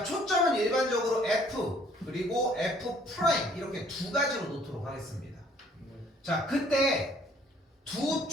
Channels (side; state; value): both; normal; correlation 0.60